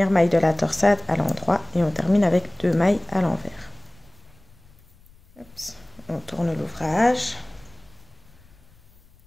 maille de la torsade à l'endroit, et on termine avec 2 mailles à l'envers. On tourne l'ouvrage,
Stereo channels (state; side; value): noise; left; rumble, 27 dB below the sound